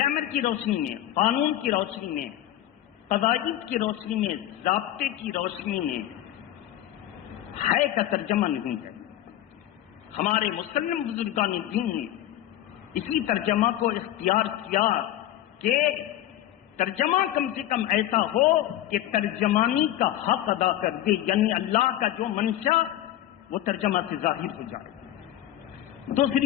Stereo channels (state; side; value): quieter; right; 13.2 dB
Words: کی روشنی میں، قانون کی روشنی میں، قواعد کی روشنی میں، ضابطے کی روشنی میں ہے کا ترجمہ نہیں ہے. ہمارے مسلم بزرگان دین نے اسی ترجمہ کو اختیار کیا کہ ترجمہ کم سے کم ایسا ہو کہ ترجمانی کا حق ادا کر دے، یعنی اللہ کا جو منشا وہ ترجمہ سے ظاہر ہو جائے.